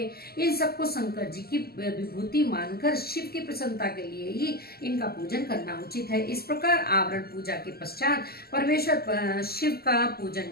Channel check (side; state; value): right; late; 0.45 ms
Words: इन सबको शंकर जी की विभूति मानकर शिव की प्रसन्नता के लिए ही इनका पूजन करना उचित है। इस प्रकार आवरण पूजा के पश्चात परमेश्वर शिव का पूजन